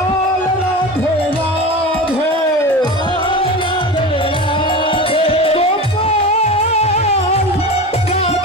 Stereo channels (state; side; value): normal; both; correlation 0.29